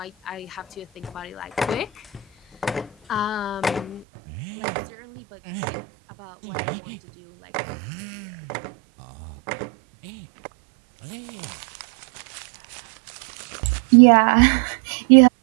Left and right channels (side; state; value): left; drops out; at 4.0 s